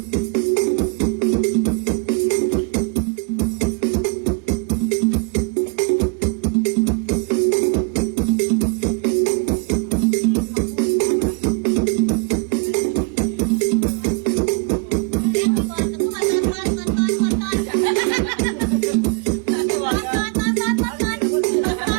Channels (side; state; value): left; quieter; 34.0 dB